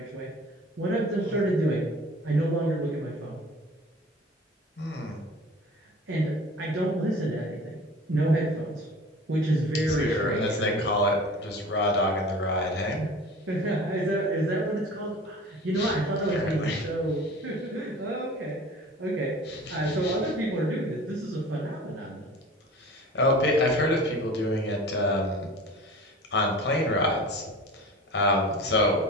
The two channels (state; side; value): normal; both; correlation 0.40